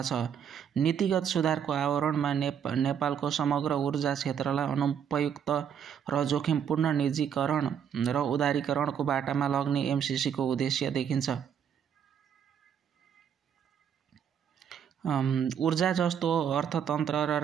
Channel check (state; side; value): quieter; left; 8.3 dB